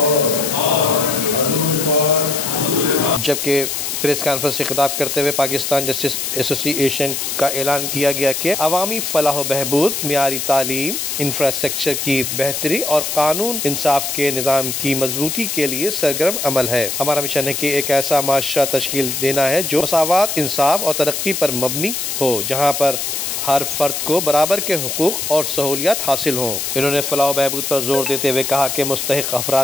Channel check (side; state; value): left; noise; hiss, 3 dB below the sound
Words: حضور پاک۔ جبکہ پریس کانفرنس سے خطاب کرتے ہوئے پاکستان جسٹس ایسوسی ایشن کا اعلان کیا گیا کہ عوامی فلاح و بہبود، معیاری تعلیم، انفراسٹرکچر کی بہتری اور قانون انصاف کے نظام کی مضبوطی کے لیے سرگرم عمل ہے۔ ہمارا مشن ہے کہ ایک ایسا معاشرہ تشکیل دینا ہے جو مساوات، انصاف اور ترقی پر مبنی ہو، جہاں پر ہر فرد کو برابر کے حقوق اور سہولیات حاصل ہوں۔ انہوں نے فلاح و بہبود پر زور دیتے ہوئے کہا کہ مستحق